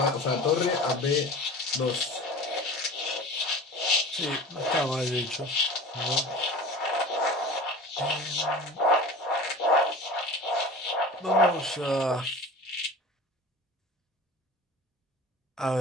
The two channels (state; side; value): normal; both; correlation 0.37